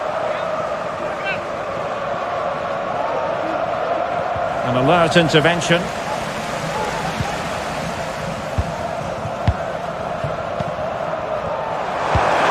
An alert intervention.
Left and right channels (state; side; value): identical; both; correlation 1.00